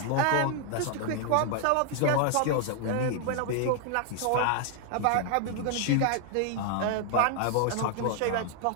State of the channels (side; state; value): both; different; correlation 0.00